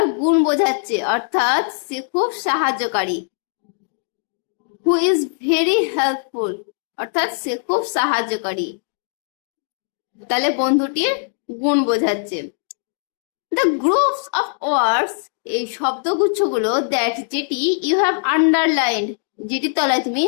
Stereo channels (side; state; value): right; silent; digital silence